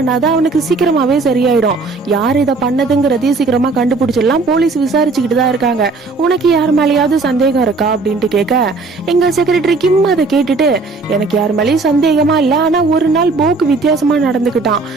அவனுக்கு சீக்கிரமாவே சரியாயிடும், யார் இதை பண்ணதுங்கிறதையும் சீக்கிரமா கண்டுபிடிச்சிடலாம், போலீஸ் விசாரிச்சுக்கிட்டு தான் இருக்காங்க, உனக்கு யார் மேலேயாவது சந்தேகம் இருக்கா அப்படின்ட்டு கேட்க, எங்க செக்ரட்டரி கிம் அதை கேட்டுட்டு, எனக்கு யார் மேலேயும் சந்தேகமா இல்ல, ஆனா ஒரு நாள் போக்கு வித்தியாசமா நடந்துகிட்டான்,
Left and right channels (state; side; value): quieter; left; 3.9 dB